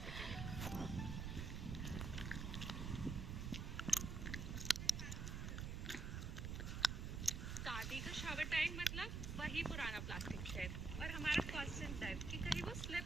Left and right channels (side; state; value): right; noise; rumble, 3 dB below the sound